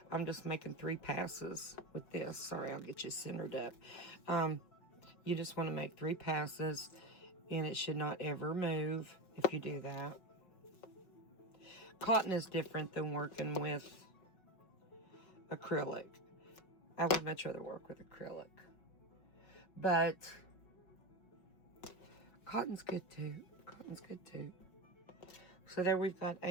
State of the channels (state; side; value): late; right; 5.4 ms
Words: I'm just making 3 passes with this. Sorry, I'll get you centered up. You just want to make 3 passes, and it should not ever move if you do that. Cotton is different than working with acrylic. I would much rather work with acrylic. But cotton's good too. Cotton's good too. So there we've got